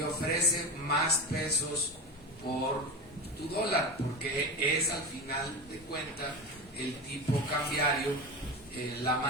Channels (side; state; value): both; normal; correlation 0.23